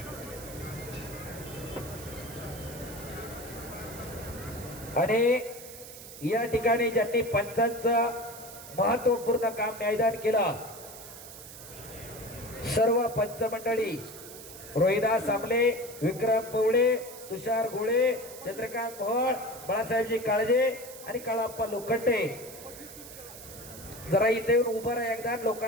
आणि या ठिकाणी ज्यांनी पंचांचं महत्वपूर्ण काम न्यायदान केलं, सर्व पंच मंडळी रोहिदास सामले, विक्रम पवळे, तुषार गोळे, चंद्रकांत मोहोळ, बाळासाहेबजी काळजे आणि काळाप्पा लोखंडे. जरा इथे येऊन उभं राहा एकदा,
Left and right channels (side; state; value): right; noise; hiss, 14 dB below the sound